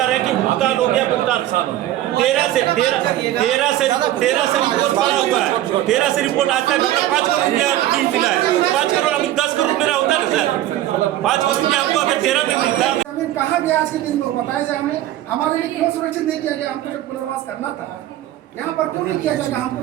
रहे हैं कि भुगतान हो गया, भुगतान 13 से रिपोर्ट पड़ा हुआ है। 13 से रिपोर्ट आज तक हमारा 5 करोड़ रुपया मिला है। 5 करोड़ अभी 10 करोड़ मेरा होता है ना सर। 5 करोड़ रुपया हमको अगर 13 में मिलता है। कहा गया आज के दिन में बताया जाए हमें, हमारे लिए क्यों सुरक्षित नहीं किया गया? हमको जब पुनर्वास करना था, यहाँ पर क्यों नहीं किया जाएगा? हमको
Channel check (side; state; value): left; quieter; 13.8 dB